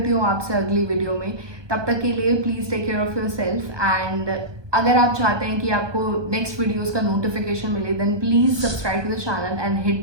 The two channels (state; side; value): late; left; 1.2 ms